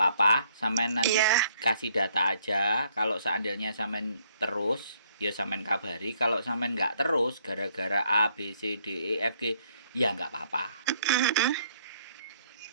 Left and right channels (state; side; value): inverted; both; correlation -0.66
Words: sampean nanti kasih data aja. Kalau seandainya sampean terus, ya sampean kabari. Kalau sampean nggak terus, gara-gara A, B, C, D, E, F, G, ya nggak apa-apa.